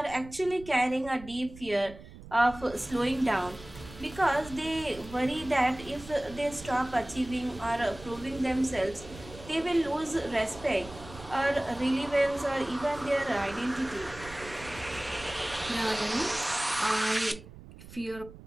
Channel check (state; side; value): noise; right; rumble, 17 dB below the sound